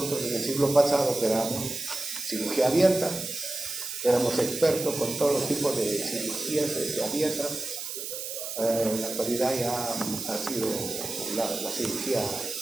en el siglo pasado que éramos cirugía abierta, éramos expertos con todos los tipos de cirugías abiertas. En la actualidad ya ha sido la cirugía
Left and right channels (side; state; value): right; noise; hiss, 6 dB below the sound